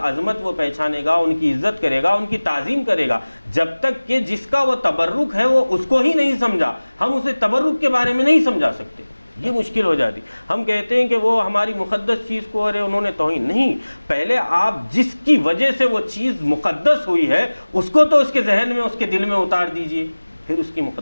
وہ پہچانے گا، ان کی عزت کرے گا، ان کی تعظیم کرے گا۔ جب تک کہ جس کا وہ تبرک ہے وہ اس کو ہی نہیں سمجھا، ہم اسے تبرک کے بارے میں نہیں سمجھا سکتے، یہ مشکل ہو جاتی۔ ہم کہتے ہیں کہ وہ ہماری مقدس چیز کو ارے انہوں نے توہین نہیں، پہلے آپ جس کی وجہ سے وہ چیز مقدس ہوئی ہے اس کو تو اس کے ذہن میں، اس کے دل میں اتار دیجئے، پھر اس کی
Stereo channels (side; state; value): both; inverted; correlation -1.00